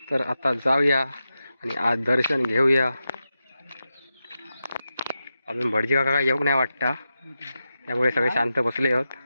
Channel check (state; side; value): inverted; both; correlation -0.90